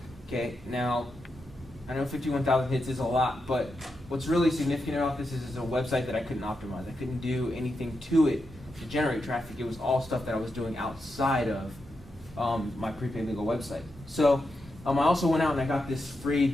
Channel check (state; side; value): normal; both; correlation 0.86